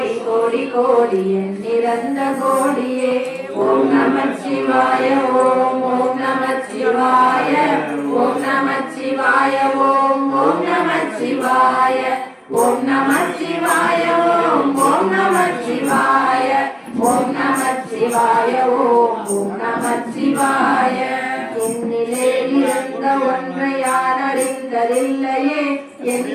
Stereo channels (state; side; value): identical; both; correlation 1.00